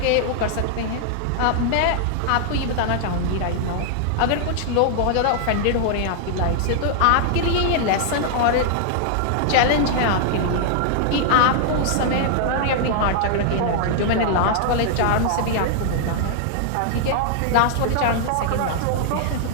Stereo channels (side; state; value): both; different; correlation -0.01